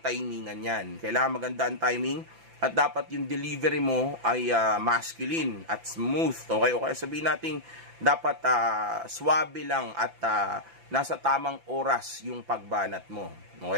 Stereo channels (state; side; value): late; left; 5.9 ms